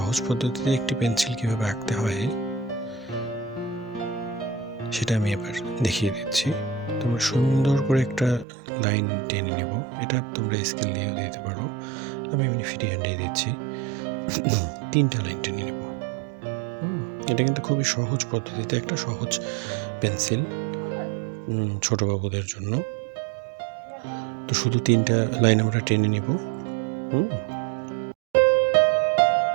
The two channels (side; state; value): left; drops out; at 8.5 s